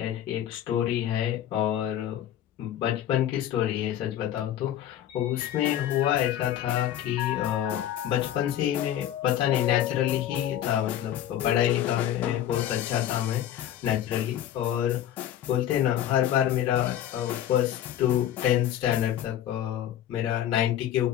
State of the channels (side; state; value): right; quieter; 11.4 dB